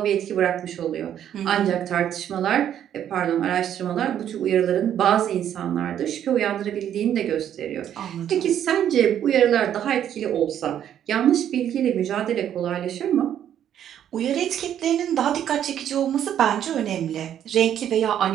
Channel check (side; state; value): left; quieter; 10.1 dB